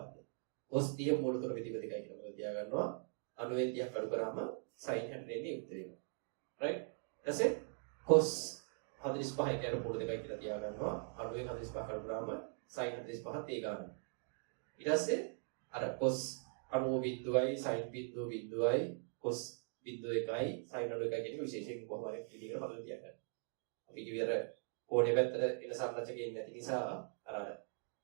cos 30 මූල තුන බෙදීම දෙකයි කියලා තියා ගන්නවා. අඩුවෙන් 30 කඩු කරාම sin 60 එන්නේ උත්තරේ. right? ඊටසේ cos 45 කියන මූල දෙකයි කියලා තියා ගන්නවා. අඩුවෙන් 45 කඩු කරාම sin 45ත් ඒ ගන්නවා. ඊට පස්සේ අර cos 90 බිඳුවයි sin බිඳුවයි cos බිඳුව එකයි sin 90 එකයි කියන විශේෂයෙන් කොහොම හරි විදිහකට හදලා තියාගන්න. අපි කිව්වර කෝණේ පැත්තට එන සංරචකයෙන් නැති නිසා අර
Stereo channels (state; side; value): silent; left; 50 dB below the other